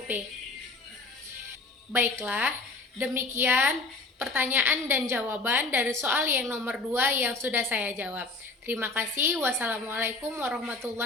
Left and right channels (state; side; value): quieter; right; 3.7 dB